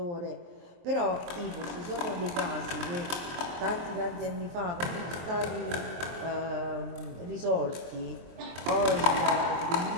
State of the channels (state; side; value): late; left; 23 ms